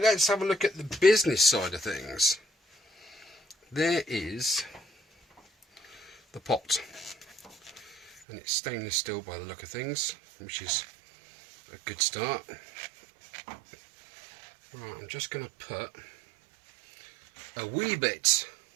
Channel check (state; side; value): drops out; left; at 8.2 s